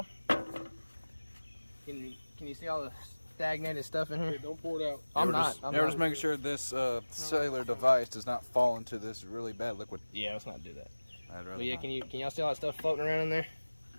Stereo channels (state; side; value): inverted; both; correlation -1.00